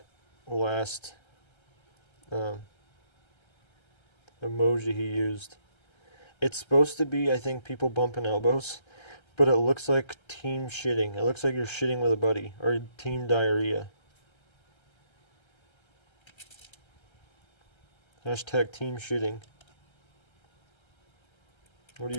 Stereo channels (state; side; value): late; right; 1.3 ms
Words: last emoji he used. It's supposed to be, I think, people bumping elbows, but it looks like team shitting. It looks like you're shitting with a buddy, or team diarrhea. Hashtag team shitting. What are